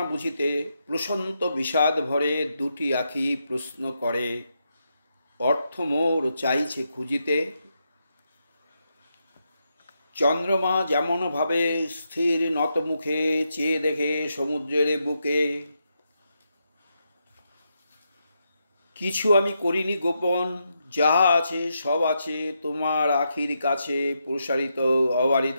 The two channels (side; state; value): both; inverted; correlation -0.83